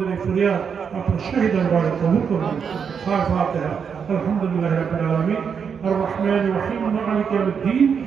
এই ফরিয়াদ আপনার শাহী দরবারে কবুল করে নিন। ফাতিহা। আলহামদুলিল্লাহি রাব্বিল আলামিন আর রহমানির রহিম মালিকি ইয়াউমিদ্দিন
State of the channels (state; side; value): quieter; left; 6.7 dB